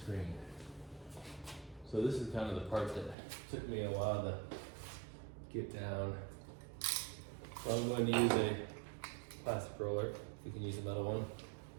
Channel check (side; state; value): left; drops out; at 3.2 s